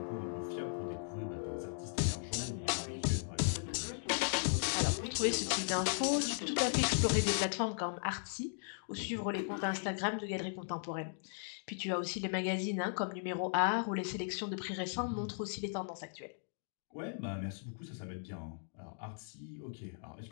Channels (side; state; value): right; silent; digital silence